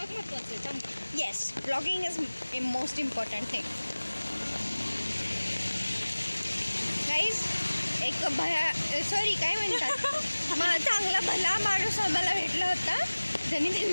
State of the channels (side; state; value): both; inverted; correlation -1.00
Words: महत्वाचं आहे. Yes, blogging is a most important thing. Guys, एक काय म्हणतात चांगला भला माणूस आम्हाला भेटला होता, ज्यांनी